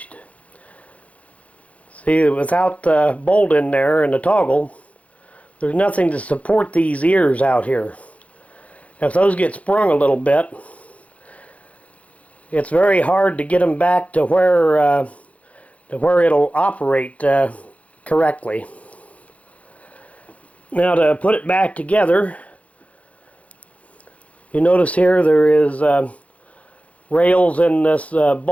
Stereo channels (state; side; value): late; right; 0.066 ms